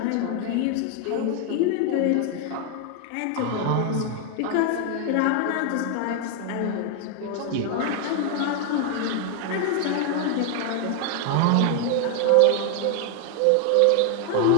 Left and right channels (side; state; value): both; different; correlation 0.00